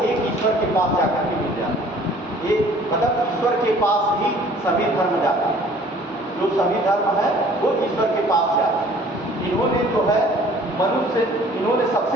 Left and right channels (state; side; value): normal; both; correlation 0.53